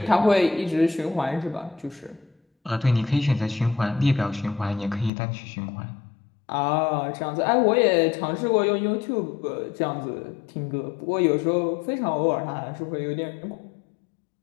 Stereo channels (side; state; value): right; drops out; at 5.1 s